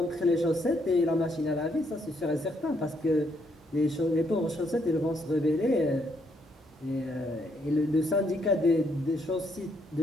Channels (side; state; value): both; normal; correlation 0.73